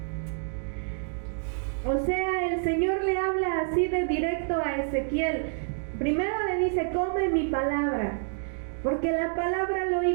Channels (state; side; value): silent; left; digital silence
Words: O sea, el Señor le habla así de directo a Ezequiel. Primero le dice, come mi palabra, porque la palabra lo